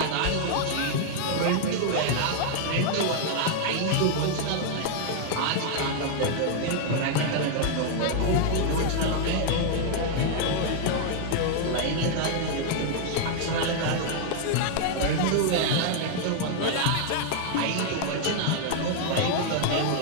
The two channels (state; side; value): different; both; correlation 0.00